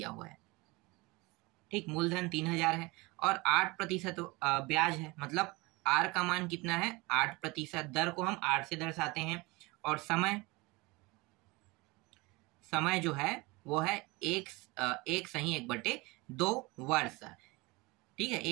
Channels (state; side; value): quieter; left; 24.2 dB